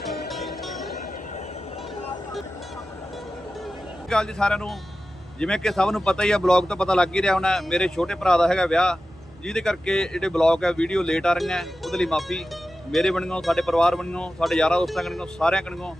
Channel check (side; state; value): both; normal; correlation 0.93